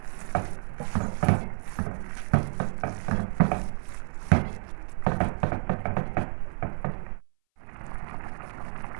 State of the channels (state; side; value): silent; left; 58 dB below the other